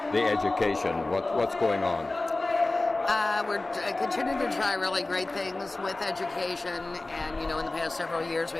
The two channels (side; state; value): right; quieter; 3.0 dB